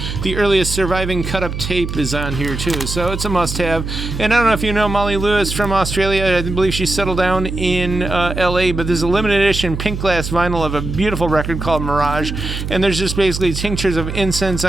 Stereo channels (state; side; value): noise; right; hum, 5 dB below the sound